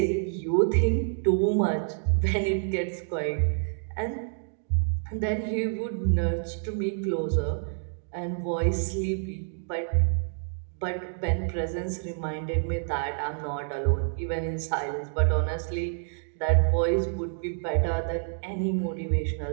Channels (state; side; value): silent; left; digital silence